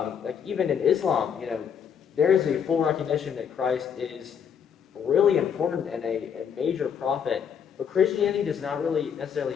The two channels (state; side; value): quieter; right; 7.6 dB